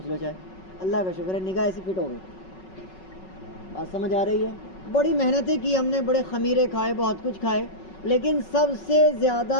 لو، چاہے، اللہ کا شکر ہے نگاہ ایسی فٹ ہو گئی۔ بات سمجھ آ رہی ہے؟ بڑی محنتیں کی ہم نے، بڑے خمیرے کھائے، بہت کچھ کھائے، لیکن سب سے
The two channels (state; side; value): late; right; 5.4 ms